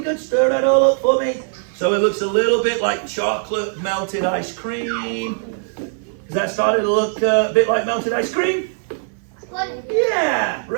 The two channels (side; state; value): left; silent; 57 dB below the other